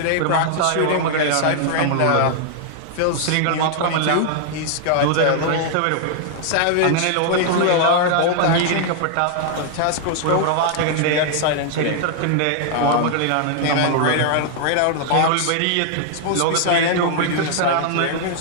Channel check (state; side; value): different; both; correlation 0.00